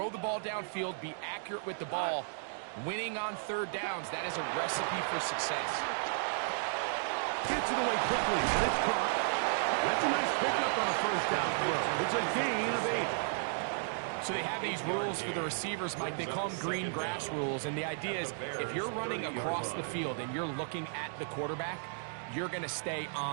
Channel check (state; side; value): silent; left; digital silence